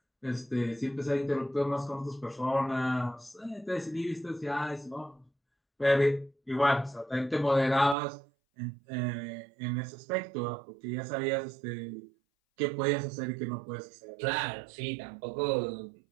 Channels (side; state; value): left; drops out; at 8.0 s